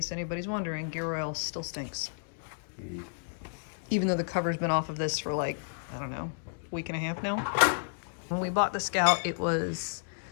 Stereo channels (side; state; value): right; silent; digital silence